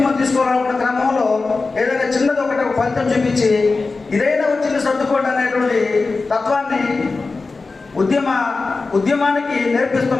తీసుకోవాలనుకున్న క్రమంలో ఏదైనా చిన్నది ఒకటి ఫలితం చూపించి ఇదైనా వచ్చింది సర్దుకోండి అనేటువంటి తత్వాన్ని ఉద్యమానికి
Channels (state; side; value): quieter; right; 3.9 dB